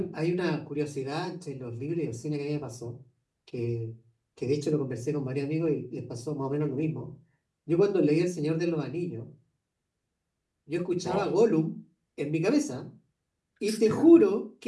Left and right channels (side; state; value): both; identical; correlation 1.00